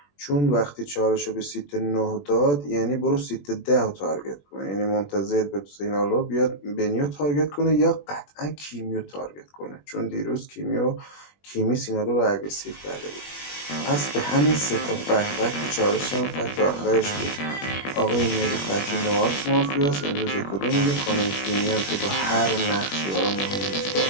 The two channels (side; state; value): right; late; 21 ms